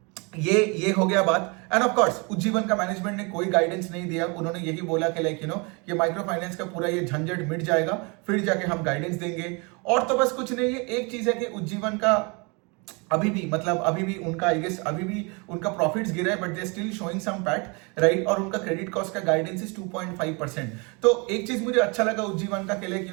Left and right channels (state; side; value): quieter; left; 30.5 dB